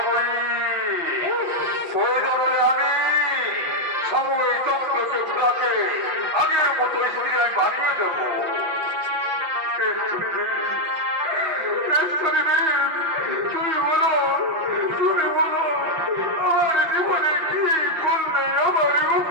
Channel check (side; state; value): left; late; 5.9 ms